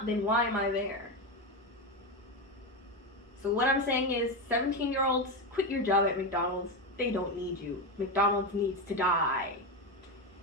then why am I there? So what I'm saying is, 17-year-olds, quit your job at McDonald's. They don't need you. McDonald's needs to die.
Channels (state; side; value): normal; both; correlation 0.14